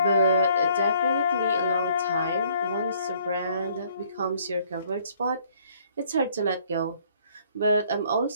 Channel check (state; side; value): inverted; both; correlation -0.62